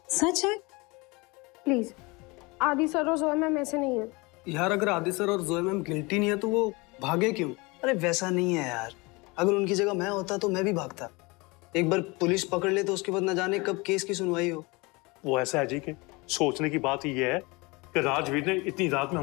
सच है? प्लीज, आदि सर और जोया मैम ऐसे नहीं है। यार, अगर आदि सर और जोया मैम गिल्टी नहीं है तो वो भागे क्यों? अरे वैसा नहीं है यार, अगर उनकी जगह मैं होता तो मैं भी भागता। एक बार पुलिस पकड़ ले तो उसके बाद न जाने कब केस की सुनवाई हो। वो ऐसा है जी कि सोचने की बात ये है कि राजवीर ने इतनी रात में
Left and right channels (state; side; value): quieter; right; 25.7 dB